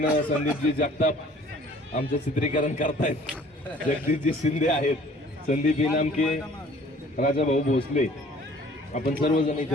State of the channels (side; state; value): both; normal; correlation 0.53